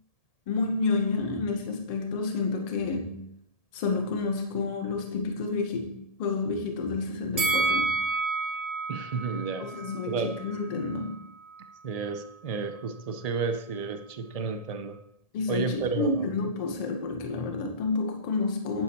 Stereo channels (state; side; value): late; right; 1.7 ms